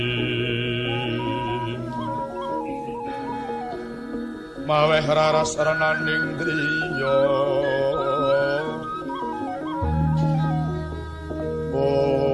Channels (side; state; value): both; identical; correlation 1.00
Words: maweh raras renaning driya